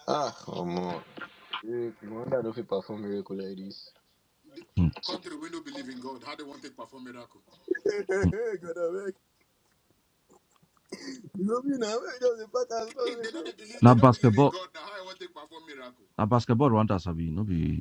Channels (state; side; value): identical; both; correlation 1.00